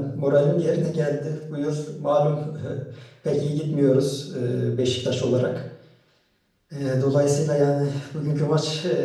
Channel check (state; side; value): identical; both; correlation 1.00